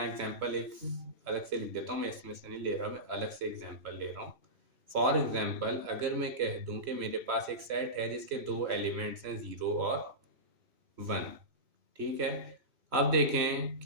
एग्जांपल एक अलग से लिख देता हूँ, मैं इसमें से नहीं ले रहा, मैं अलग से एग्जांपल ले रहा हूँ। फॉर एग्जांपल अगर मैं कह दूं कि मेरे पास एक सेट है जिसके दो एलिमेंट्स हैं 0 और 1, ठीक है। अब देखें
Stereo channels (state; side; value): late; left; 3.0 ms